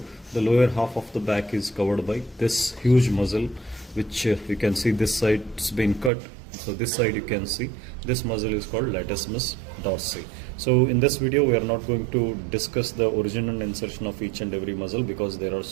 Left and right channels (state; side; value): drops out; left; at 6.1 s